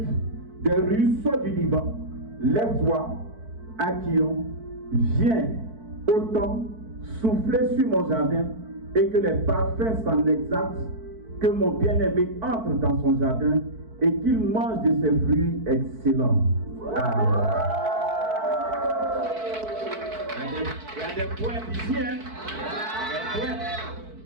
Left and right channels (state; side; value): late; left; 4.6 ms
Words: des ruisseaux du Liban. Lève-toi, Akion, viens, autant, souffler sur mon jardin et que les parfums s'en exaltent, que mon bien-aimé entre dans son jardin et qu'il mange de ses fruits excellents. Amen. Il y a des poètes ici, hein?